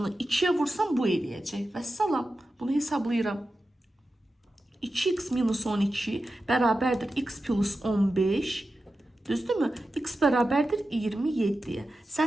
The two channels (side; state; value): both; normal; correlation 0.92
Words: 2'ye vursam bu eləyəcək. Vəssalam. Bunu hesablayıram. 2x minus 12 bərabərdir x plus 15. Düzdürmü? X bərabərdir 27'ye.